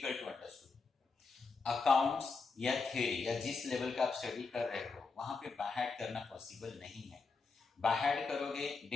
to understand. Accounts या थ्योरी या जिस लेवल का आप स्टडी कर रहे हो वहां पे बायहार्ट करना पॉसिबल नहीं है। बायहार्ट करोगे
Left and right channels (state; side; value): quieter; right; 4.5 dB